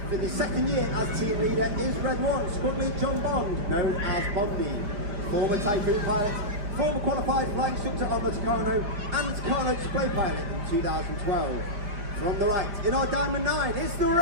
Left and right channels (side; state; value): left; late; 5.0 ms